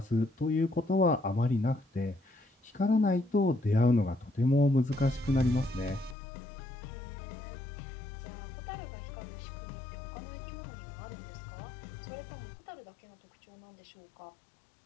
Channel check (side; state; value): right; drops out; at 6.2 s